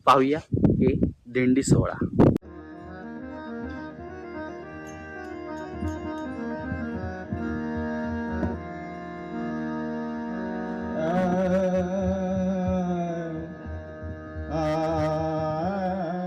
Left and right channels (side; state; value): both; identical; correlation 1.00